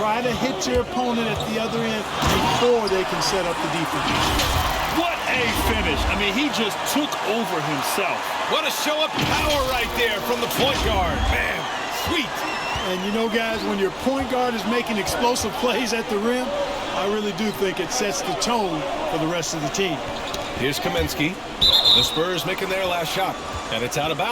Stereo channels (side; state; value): both; identical; correlation 1.00